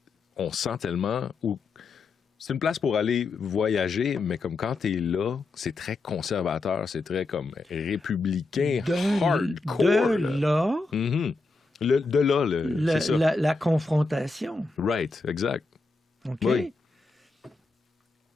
on sent tellement... C'est une place pour aller voyager, mais comme quand t'es là, c'est très conservateur, c'est très comme républicain, hardcore. De là, Mhm. De là, c'est ça. la confrontation. Right, exact. OK? Oui.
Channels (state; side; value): quieter; right; 3.6 dB